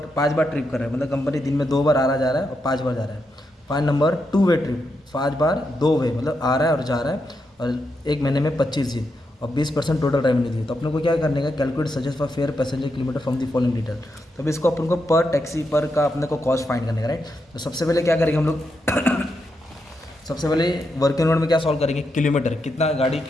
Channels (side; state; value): both; normal; correlation 0.84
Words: बार ट्रिप कर रहा है। मतलब कंपनी दिन में 2 बार आ रहा जा रहा है और 5 बार जा रहा है। फाइन नंबर टू वे ट्रिप, 5 बार 2 वे, मतलब आ रहा है और जा रहा है। और एक महीने में 25 दिन और 20% टोटल रेवेन्यू दी। तो अपने को क्या करने का, calculate suggest for fair passenger kilometre from the following detail. तो अभी इसको अपन को पर टैक्सी पर का अपने को कॉस्ट फाइंड करने का राइट। तो सबसे पहले क्या करेंगे हम लोग सबसे पहले वर्किंग नोट में क्या सॉल्व करेंगे, किलोमीटर, कितना गाड़ी